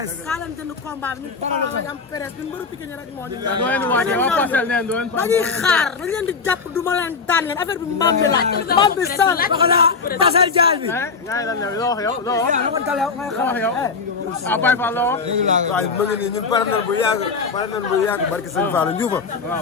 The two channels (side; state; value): right; quieter; 4.9 dB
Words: kaa leen jënd combat bi ñu Pokola lañ am presse ñun mbëru Pikine rek moo ñu dañuy xaar dañ leen di jàpp du ma leen daan leen affaire bi mbaam bi laaj mbaam bi sal pasal jaal bi ngay lan loo wax yow loo wax yow ah Baye Fall loo waaye ma ngi nii ñun pare nañ bu yàgg barki sëñ Fall Ndioufa